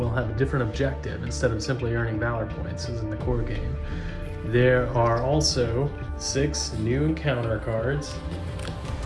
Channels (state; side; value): identical; both; correlation 1.00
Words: have a different objective instead of simply earning valor points as in the core game. There are also 6 new encounter cards